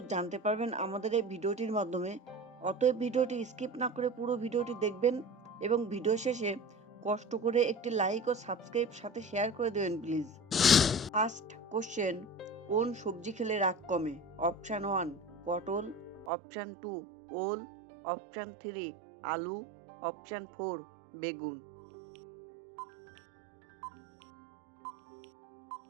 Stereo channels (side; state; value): left; drops out; at 16.3 s